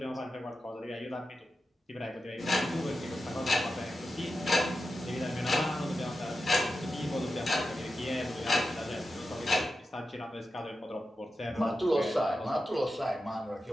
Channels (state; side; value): normal; both; correlation 0.90